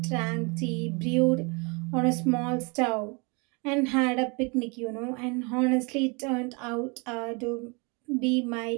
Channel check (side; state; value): left; quieter; 31.1 dB